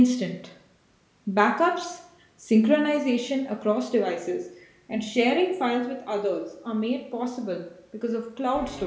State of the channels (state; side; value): identical; both; correlation 1.00